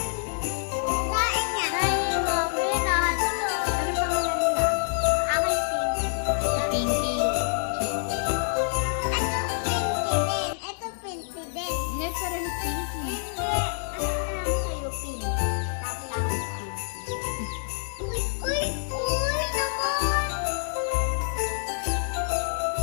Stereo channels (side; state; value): right; silent; digital silence